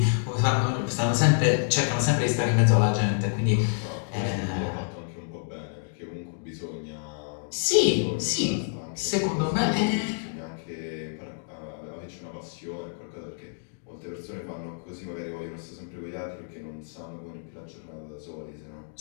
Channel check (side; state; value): right; silent; digital silence